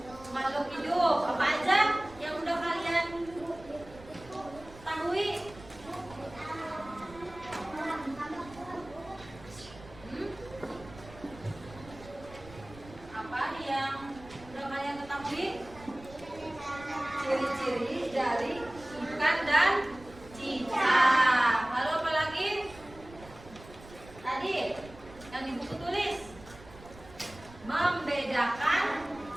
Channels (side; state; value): right; noise; rumble, 19 dB below the sound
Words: Makhluk hidup. Apa aja yang udah kalian ketahui? Apa yang udah kalian ketahui? Ciri-ciri dari ikan dan cicak. Lalu apa lagi? Tadi yang di buku tulis membedakan